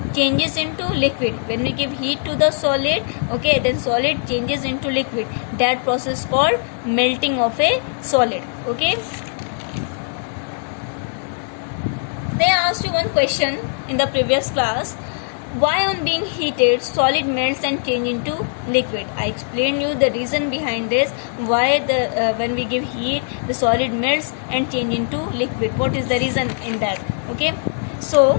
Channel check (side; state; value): right; silent; digital silence